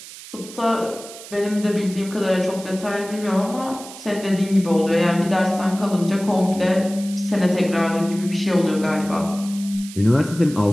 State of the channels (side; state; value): right; noise; hiss, 15 dB below the sound